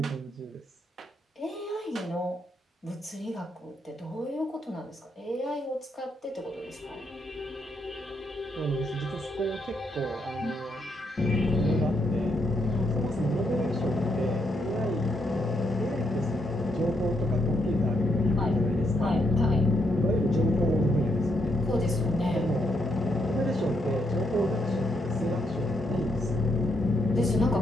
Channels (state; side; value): normal; both; correlation 0.78